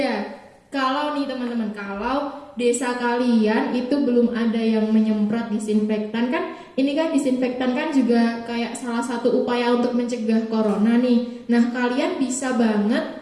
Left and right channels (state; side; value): identical; both; correlation 1.00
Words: Kalau nih teman-teman, kalau desa kalian itu belum ada yang menyemprot disinfektan, kan ini kan disinfektan kan juga kayak salah satu upaya untuk mencegah corona nih. Nah, kalian bisa